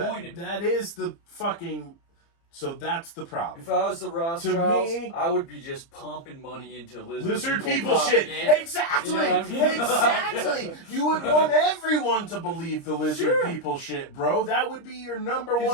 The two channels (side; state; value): right; late; 30 ms